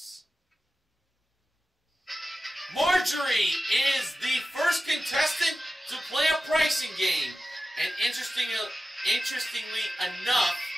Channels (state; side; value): normal; both; correlation 0.94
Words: Marjorie is the first contestant to play a pricing game. And interestingly enough,